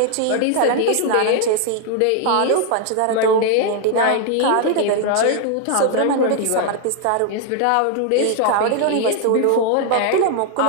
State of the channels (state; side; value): different; both; correlation 0.00